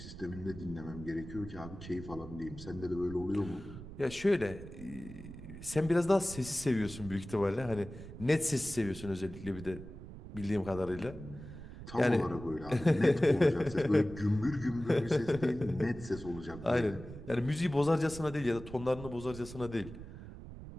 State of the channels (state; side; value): noise; right; rumble, 13 dB below the sound